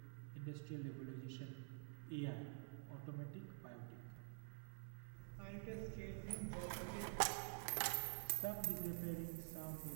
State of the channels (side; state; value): left; silent; digital silence